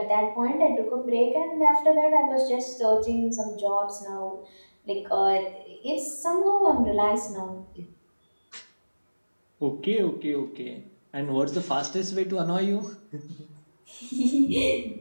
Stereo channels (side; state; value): both; inverted; correlation -1.00